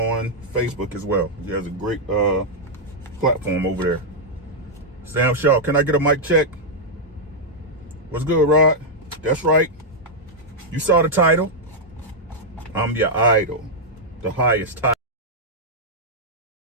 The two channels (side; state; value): both; normal; correlation -0.05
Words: Facebook as well. He has a great platform over there. Sam Shaw, can I get a mic check? What's good, Rod? That's right. You saw the title. I'm your idol. The highest title.